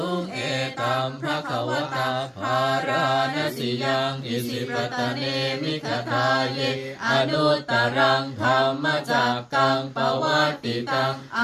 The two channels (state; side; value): identical; both; correlation 1.00